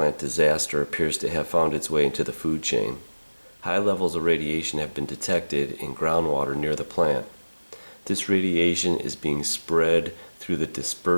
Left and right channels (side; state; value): both; inverted; correlation -1.00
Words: disaster appears to have found its way into the food chain. High levels of radiation have been detected in groundwater near the plant. This radiation is being spread through the